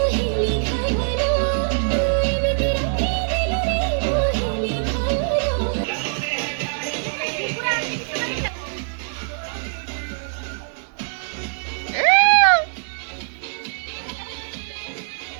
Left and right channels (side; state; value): left; silent; 64 dB below the other